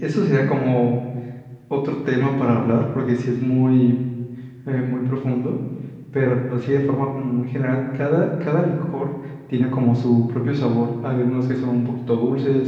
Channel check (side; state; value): both; identical; correlation 1.00